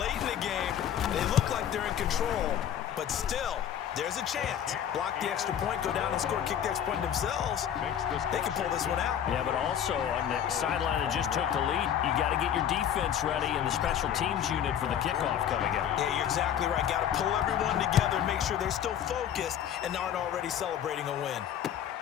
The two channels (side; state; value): right; quieter; 9.7 dB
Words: in the game. They look like they're in control, but still, there's a chance. Block the extra point, go down and score, kick the extra point themselves. They can pull this one out. Yeah, but also on the sideline that just took the lead, you got to get your defense ready and the special teams unit for the kickoff coming up. Yeah, you're exactly right. Got to pull everyone together, make sure they're still focused and aren't already celebrating a win.